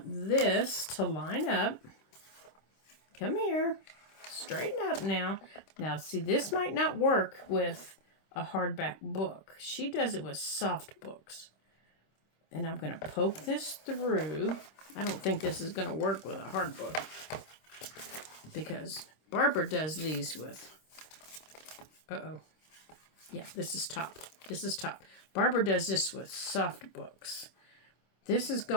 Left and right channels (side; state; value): right; late; 26 ms